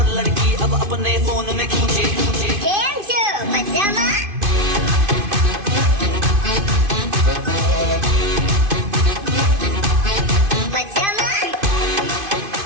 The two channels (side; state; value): left; late; 2.5 ms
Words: लड़की अब अपने फोन में खींचे।